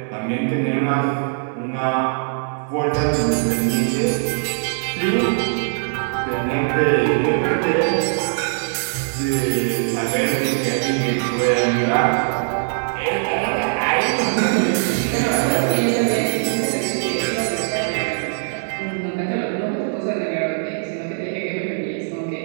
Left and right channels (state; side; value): silent; left; digital silence